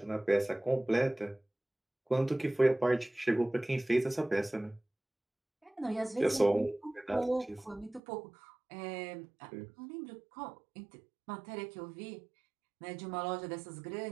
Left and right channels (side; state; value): left; drops out; at 8.0 s